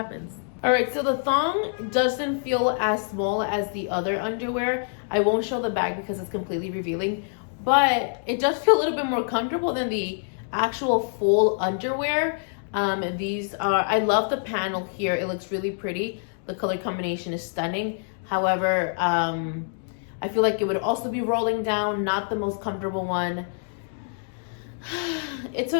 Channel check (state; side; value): silent; right; digital silence